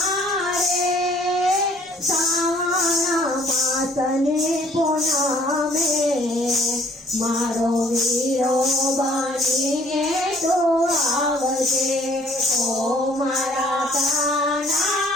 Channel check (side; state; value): both; normal; correlation 0.58